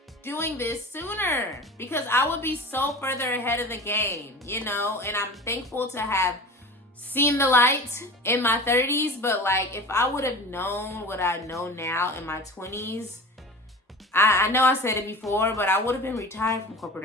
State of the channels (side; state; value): both; normal; correlation 0.36